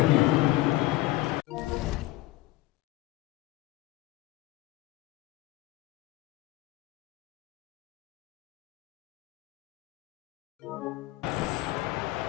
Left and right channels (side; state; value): right; quieter; 18.1 dB